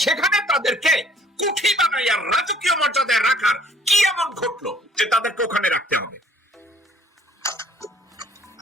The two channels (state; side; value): normal; both; correlation 0.59